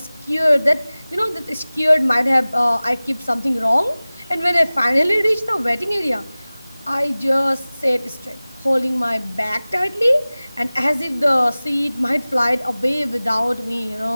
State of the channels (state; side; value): inverted; both; correlation -0.98